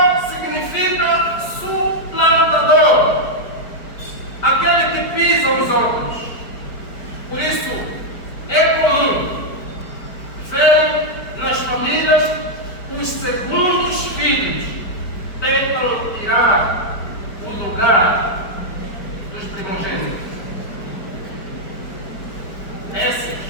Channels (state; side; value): late; right; 4.6 ms